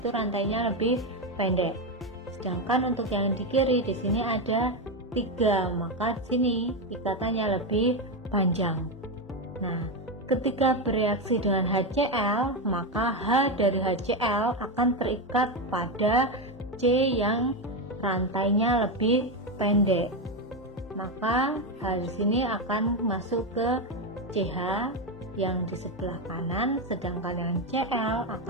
rantainya lebih pendek. Sedangkan untuk yang di kiri di sini ada 3, maka di sini ikatannya lebih panjang. Nah, ketika bereaksi dengan HCl, maka H dari HCl akan terikat pada C yang rantainya lebih pendek. Maka H di sini akan masuk ke CH yang di sebelah kanan, sedangkan yang Cl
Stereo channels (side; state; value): both; normal; correlation 0.10